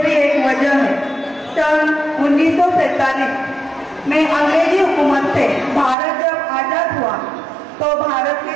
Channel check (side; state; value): left; drops out; at 6.0 s